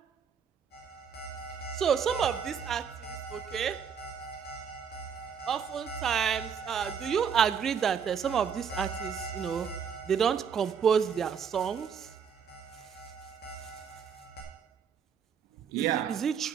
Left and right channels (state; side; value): quieter; left; 7.2 dB